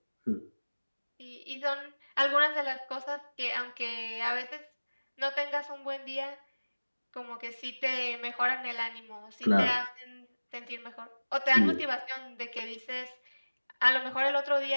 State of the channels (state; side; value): inverted; both; correlation -1.00